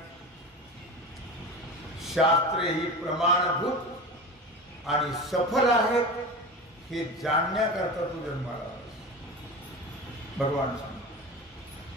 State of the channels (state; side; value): normal; both; correlation 0.28